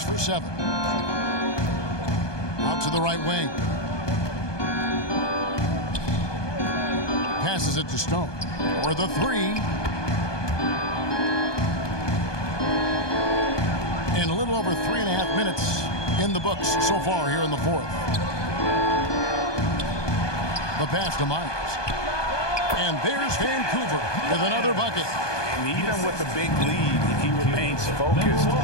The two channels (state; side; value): late; right; 1.2 ms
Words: for 7. Out to the right wing. Passes it to Stone. For the 3. And a little over 3.5 minutes in the books so far here in the fourth. The pass to Myers. And there's Vancouver with another bucket. And even with the big lead, he remains focused